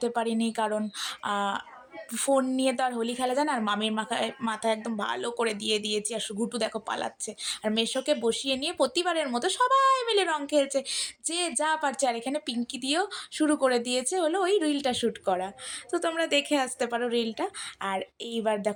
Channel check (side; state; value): both; identical; correlation 1.00